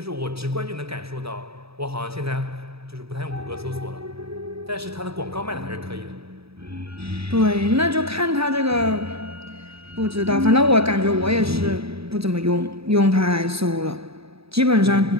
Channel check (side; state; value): left; late; 0.77 ms